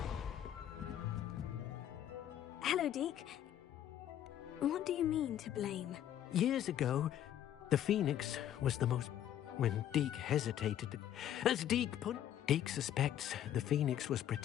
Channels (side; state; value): right; quieter; 11.0 dB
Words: Hello, Deke. What do you mean to blame? Years ago, the Phoenix was the most... When Deke hesitated... As Deke put... Deke suspects the Phoenix was